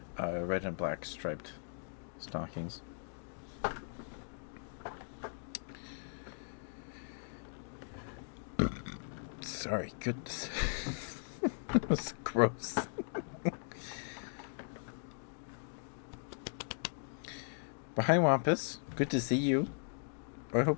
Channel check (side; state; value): right; silent; digital silence